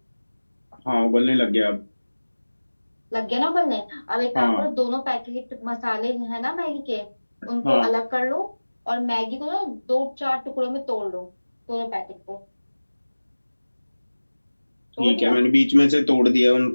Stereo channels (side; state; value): both; inverted; correlation -1.00